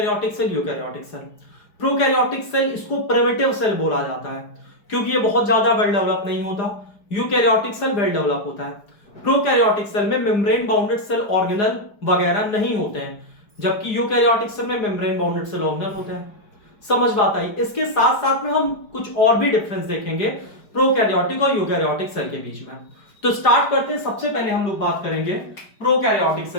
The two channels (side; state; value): right; late; 4.9 ms